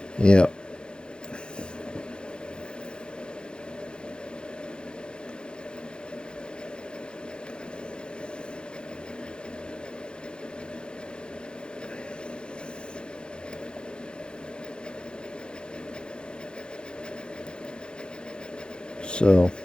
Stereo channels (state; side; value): late; right; 0.050 ms